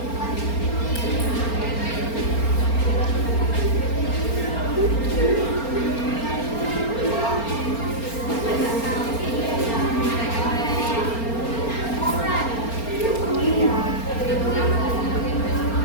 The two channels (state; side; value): late; right; 4.3 ms